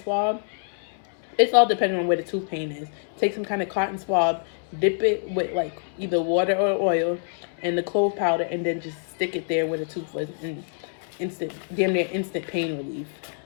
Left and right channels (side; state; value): right; silent; 61 dB below the other